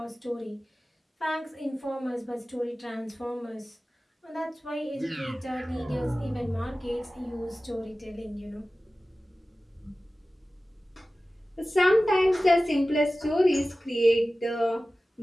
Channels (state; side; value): normal; both; correlation 0.96